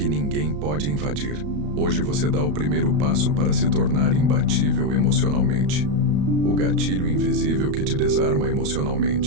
ninguém pode invadir. Hoje você dá o primeiro passo para se tornar imbatível emocionalmente. O gatilho invisível que te desarma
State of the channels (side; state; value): left; late; 34 ms